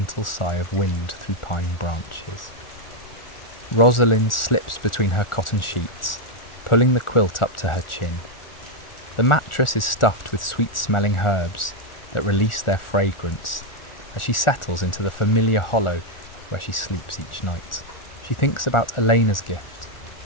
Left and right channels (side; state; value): right; late; 1.4 ms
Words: sigh of wind through pine branches. Rosalind slips between her cotton sheets, pulling the quilt up to her chin. The mattress is stuffed with sweet-smelling herbs that release their fragrance as she settles into the familiar hollow where she sleeps each night. She thinks about Elena's gift